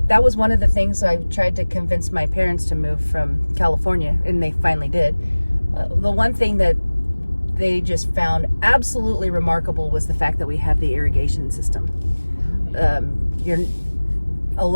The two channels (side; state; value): both; inverted; correlation -1.00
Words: that was one of the things I tried to convince my parents to move from California, and they finally did. The one thing that they just found absolutely remarkable was the fact that we have the irrigation system. A